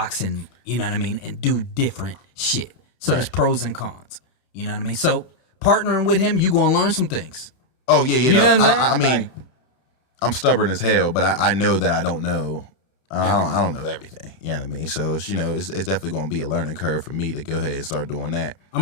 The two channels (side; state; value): right; late; 31 ms